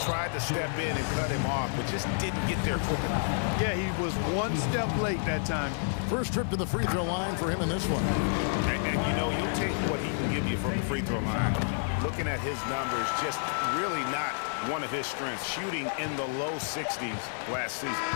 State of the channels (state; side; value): silent; right; digital silence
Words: Tried to step in and cut him off, but just didn't get there quick enough. Yeah, he was one step late that time. First trip to the free throw line for him in this one. And you know, you'll take what he can give you from the free throw line. Looking at his numbers, just really not one of his strengths. Shooting in the low 60s last season.